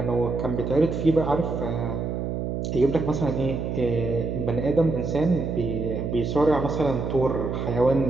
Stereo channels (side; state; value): right; noise; hum, 3 dB below the sound